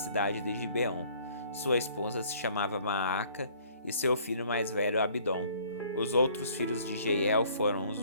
de Gibeon. Sua esposa se chamava Maaca e seu filho mais velho Abidom. Os outros filhos de Jeiel foram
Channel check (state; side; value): inverted; both; correlation -0.57